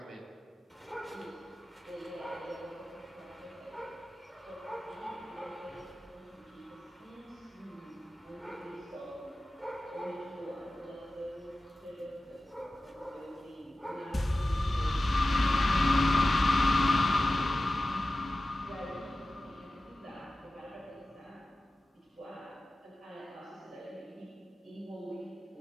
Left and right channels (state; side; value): normal; both; correlation 0.95